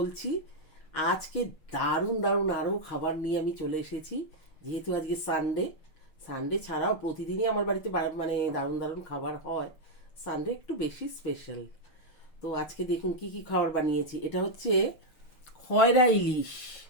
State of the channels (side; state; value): right; late; 6.3 ms